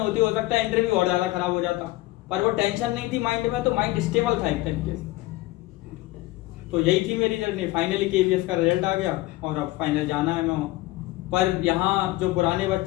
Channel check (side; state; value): right; quieter; 18.4 dB